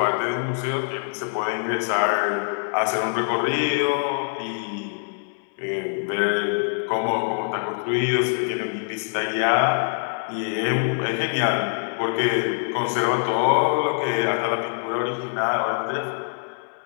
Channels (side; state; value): right; silent; digital silence